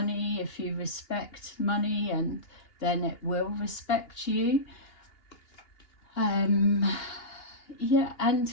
If you respect money, and then it will respect you. Yeah,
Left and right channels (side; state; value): right; late; 2.8 ms